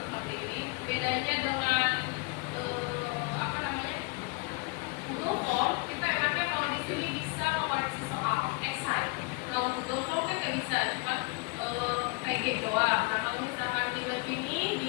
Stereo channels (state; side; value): quieter; right; 29.3 dB